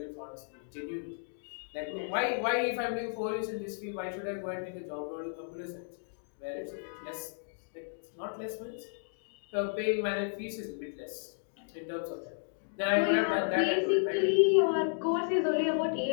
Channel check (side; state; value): right; silent; digital silence